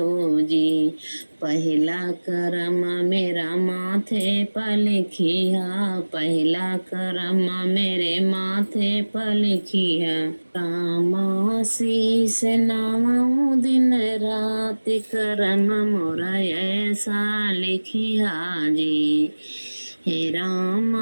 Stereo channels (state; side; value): inverted; both; correlation -1.00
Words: जी। पहला करम मेरा माथे पर लिखिया। पहला करम मेरे माथे पर लिखिया। रामा शीस नामऊ दिन रात करम मोरा ऐसा लिखिया जी। हे